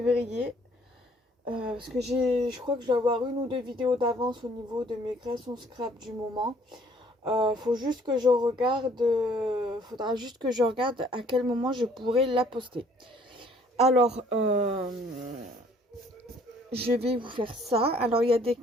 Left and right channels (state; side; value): normal; both; correlation 0.59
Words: Parce que je crois que je dois avoir une ou deux vidéos d'avance au niveau de mes créations scrap du moment. Faut juste que je regarde, faudra juste que je regarde à quel moment je pourrai la poster. Alors, je vais vous faire ça. Alors, il y a des